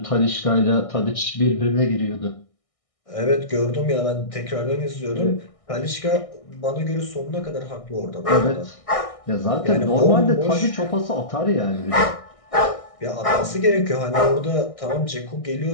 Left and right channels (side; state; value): right; late; 1.6 ms